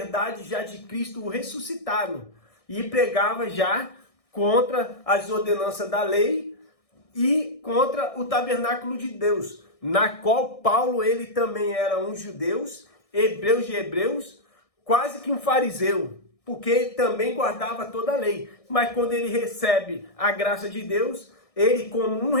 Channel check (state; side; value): late; right; 1.6 ms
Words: já de Cristo ressuscitado, e pregava já contra as ordenanças da lei e contra o tabernáculo de Deus, na qual Paulo, ele também era um judeu, hebreus de hebreus, quase que um fariseu, porque ele também guardava toda a lei. Mas quando ele recebe a graça de Deus, ele como um